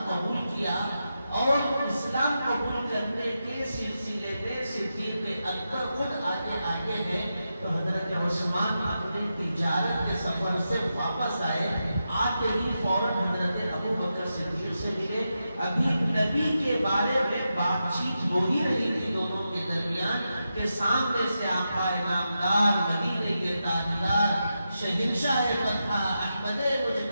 قبول کیا، اور اسلام قبول کرنے کے سلسلے میں صدیق اکبر خود آگے ہے۔ تو حضرت عثمان اپنے تجارت کے سفر سے واپس آئے، آتے ہی فوراً حضرت ابو بکر صدیق سے ملے۔ ابھی نبی کے بارے میں بات چیت ہو ہی رہی تھی دونوں کے درمیان کہ سامنے سے آقا نامدار، مدینے کے تاجدار، شہنشاہ مدحہ، احمد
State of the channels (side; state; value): both; inverted; correlation -0.88